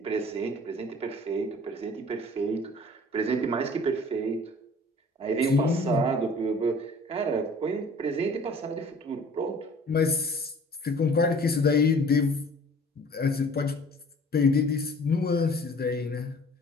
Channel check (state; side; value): normal; both; correlation 0.49